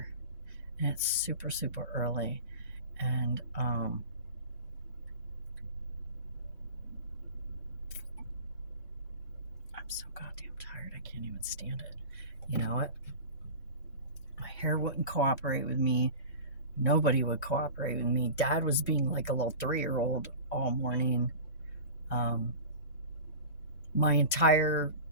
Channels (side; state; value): both; inverted; correlation -0.33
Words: And it's super, super early. And I'm so goddamn tired. I can't even stand it. You know what? My hair wouldn't cooperate with me. Nobody would cooperate with me. Dad was being like a little 3-year-old all morning. My entire